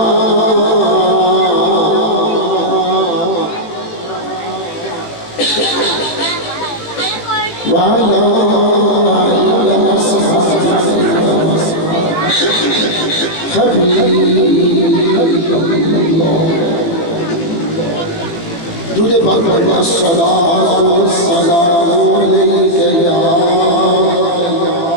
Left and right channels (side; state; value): right; late; 17 ms